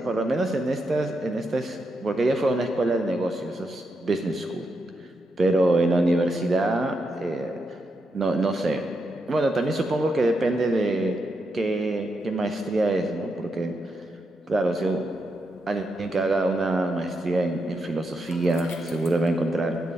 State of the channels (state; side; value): normal; both; correlation 0.83